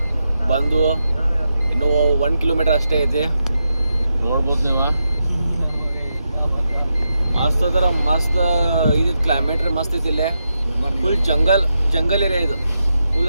ಬಂದು ಇನ್ನೂ 1 kilometer ಅಷ್ಟೇ ಐತಿ. ನೋಡ್ಬೋದು ನೀವು, ಮಸ್ತ್ ಅದರ ಮಸ್ತ್ ಇದು ಕ್ಲೈಮೇಟ್ ರೀ, ಮಸ್ತ್ ಐತಿ ಇಲ್ಲೇ. ಫುಲ್ ಜಂಗಲ್ ಏರಿಯಾ ಇದು.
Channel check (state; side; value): inverted; both; correlation -0.86